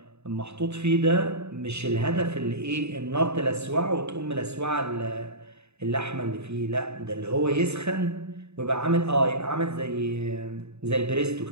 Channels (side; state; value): left; late; 0.80 ms